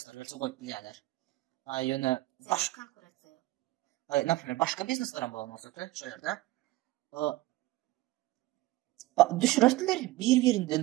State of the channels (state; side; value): quieter; left; 18.0 dB